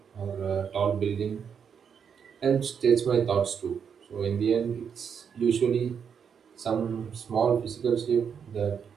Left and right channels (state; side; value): quieter; left; 7.1 dB